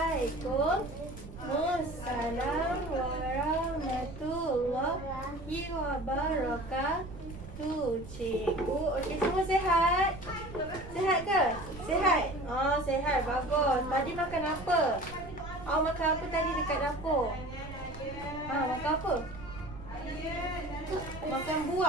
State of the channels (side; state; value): right; noise; rumble, 13 dB below the sound